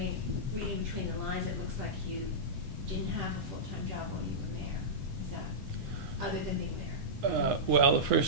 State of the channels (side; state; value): left; late; 8.1 ms